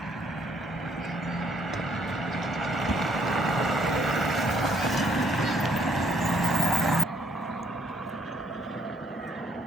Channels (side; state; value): both; normal; correlation 0.69